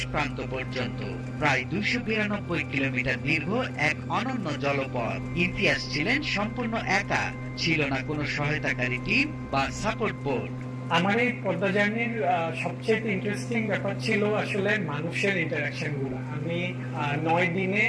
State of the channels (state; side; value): identical; both; correlation 1.00